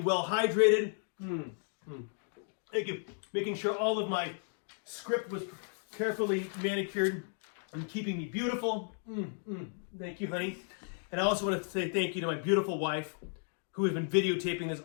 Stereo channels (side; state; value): right; silent; 55 dB below the other